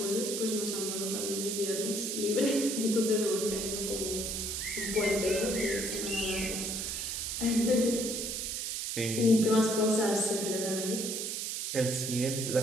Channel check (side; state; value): right; noise; hiss, 3 dB below the sound